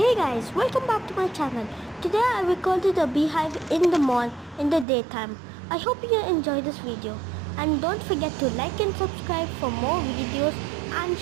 guys, welcome back to my channel. Today I recorded a beehive in the mall in the daytime. I hope you enjoy this video and don't forget to like and subscribe for more videos and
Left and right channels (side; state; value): left; drops out; at 4.9 s